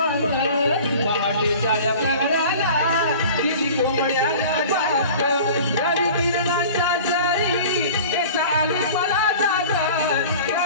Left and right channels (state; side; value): inverted; both; correlation -0.41